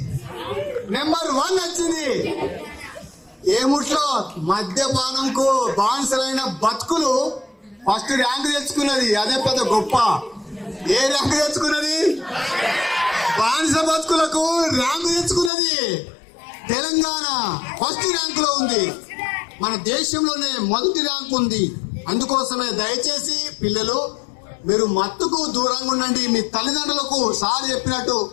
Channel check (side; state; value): right; drops out; at 15.5 s